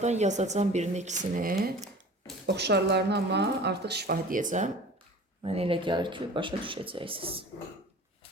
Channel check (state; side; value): normal; both; correlation 0.42